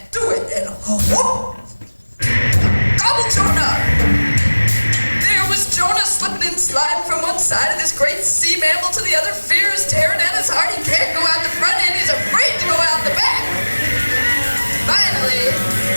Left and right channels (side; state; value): both; inverted; correlation -1.00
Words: side of this great sea mammal to the other, fears tearing at his heart. He can't go out the front end, he's afraid to go out the back. Finally,